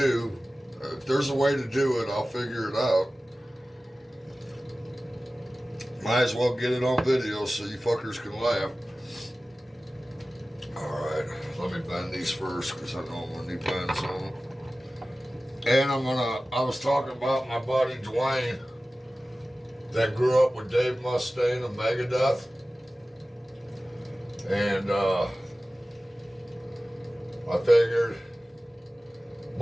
if there's a way to do it, I'll figure it out. Might as well get it on video so you fuckers can laugh. Alright, let me bend these first because I know I'm gonna need bends on them. And I was talking about my buddy Dwayne that grew up with Dave Mustaine of Megadeth. And I figured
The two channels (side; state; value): both; normal; correlation 0.96